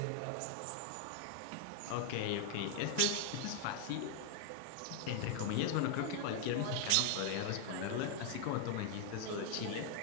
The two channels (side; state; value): both; different; correlation 0.00